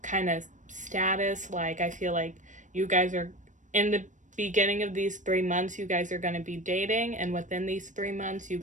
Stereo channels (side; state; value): left; late; 0.36 ms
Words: kind of status. Like, I feel like you guys are in the beginning of these 3 months, you guys are going to be dating, and within these 3 months, you